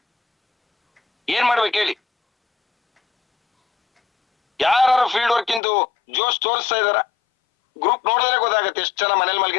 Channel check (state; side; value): drops out; right; at 5.6 s